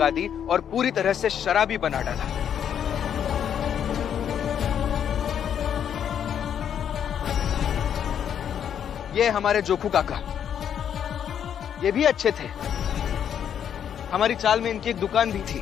दी और पूरी तरह से शराबी बना डाला। ये हमारे जोखू काका, ये भी अच्छे थे। हमारी चाल में इनकी एक दुकान भी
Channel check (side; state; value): right; quieter; 8.8 dB